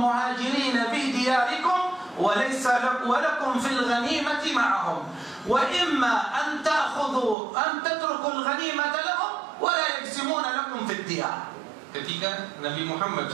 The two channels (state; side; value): drops out; left; at 7.4 s